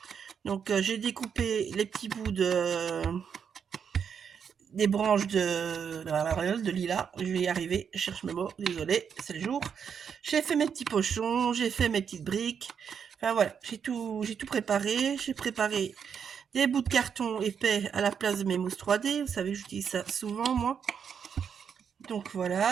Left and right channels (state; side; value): quieter; left; 7.2 dB